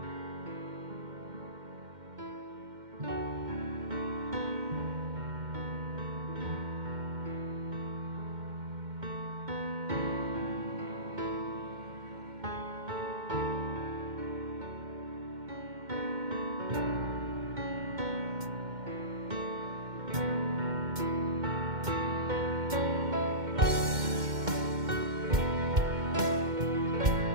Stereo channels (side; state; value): left; late; 2.1 ms